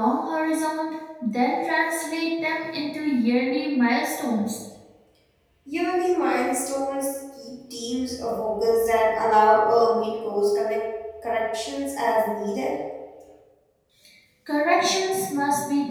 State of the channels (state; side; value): identical; both; correlation 1.00